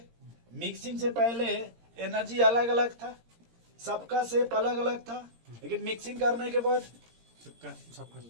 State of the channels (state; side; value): late; left; 17 ms